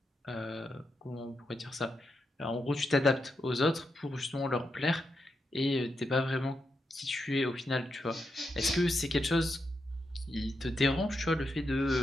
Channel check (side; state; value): both; normal; correlation 0.84